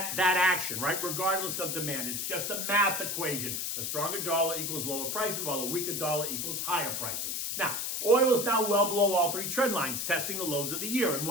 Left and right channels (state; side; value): noise; left; hiss, 2 dB below the sound